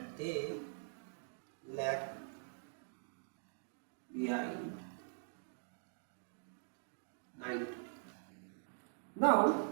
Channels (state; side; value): silent; left; digital silence